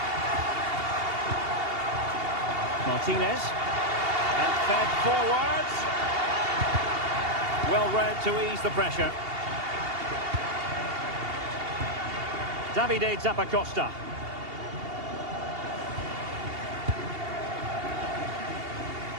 Martinez. And fed forwards. Well read to ease the pressure. Davide Zappacosta.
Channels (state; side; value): late; left; 2.8 ms